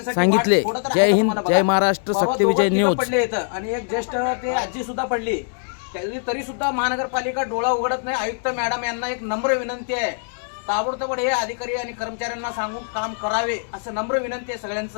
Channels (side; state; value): right; silent; 64 dB below the other